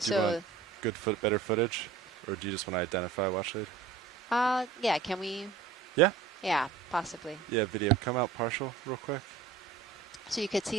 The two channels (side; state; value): left; quieter; 5.8 dB